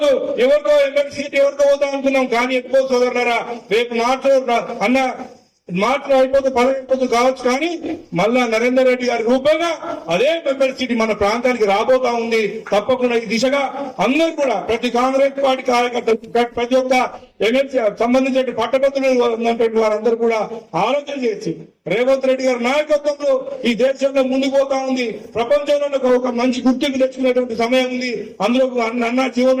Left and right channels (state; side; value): identical; both; correlation 1.00